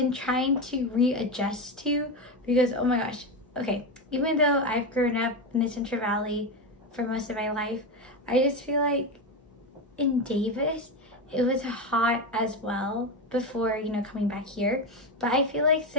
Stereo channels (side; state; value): both; normal; correlation 0.15